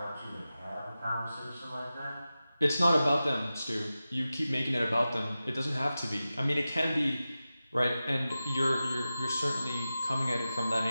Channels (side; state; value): both; inverted; correlation -0.94